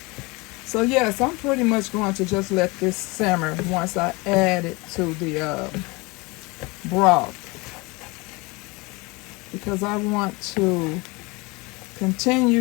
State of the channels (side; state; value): right; quieter; 25.5 dB